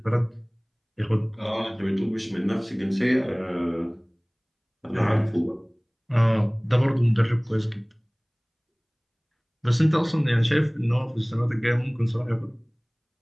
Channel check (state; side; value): identical; both; correlation 1.00